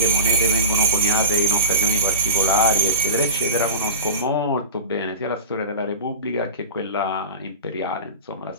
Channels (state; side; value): inverted; both; correlation -0.31